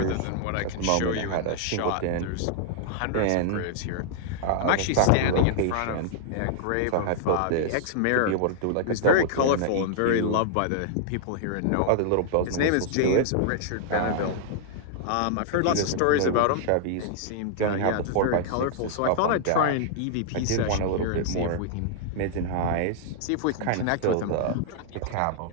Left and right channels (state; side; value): different; both; correlation -0.01